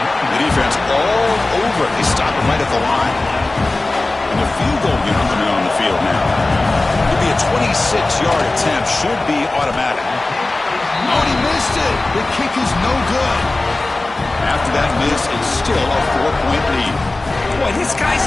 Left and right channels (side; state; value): right; quieter; 3.0 dB